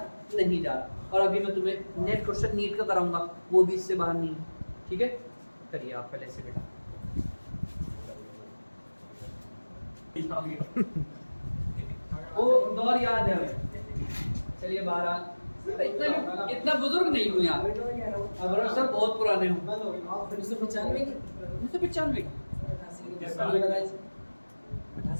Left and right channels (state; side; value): inverted; both; correlation -1.00